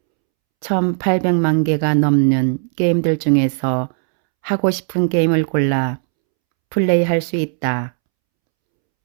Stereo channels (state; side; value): silent; left; 68 dB below the other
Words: 1800만 개가 넘는 게임들 중에서 하고 싶은 게임을 골라 플레이할 수 있다.